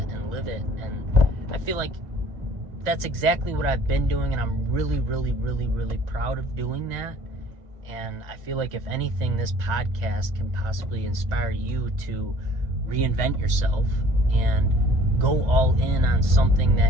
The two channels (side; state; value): left; late; 2.0 ms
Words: and live it. And I feel like that's exactly what I've been doing, and I'm really, really, really, really proud of doing that. And I feel like, if anything, this podcast can possibly inspire you to reinvent yourself and go all in on something